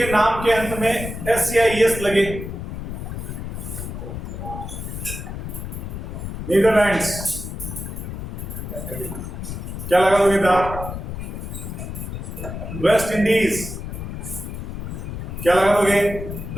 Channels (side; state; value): left; noise; rumble, 7 dB below the sound